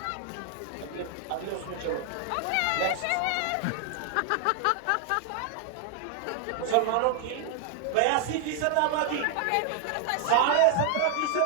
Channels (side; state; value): both; different; correlation 0.00